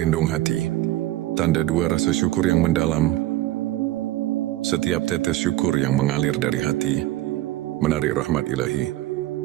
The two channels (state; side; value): quieter; left; 15.9 dB